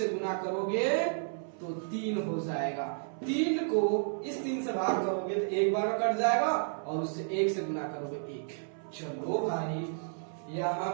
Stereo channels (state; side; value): silent; left; 56 dB below the other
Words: गुना करोगे तो 3 हो जाएगा। 3 को इस 3 से भाग करोगे तो 1 बार में कट जाएगा और उससे 1 से गुना करोगे 1। चलो भाई, यहां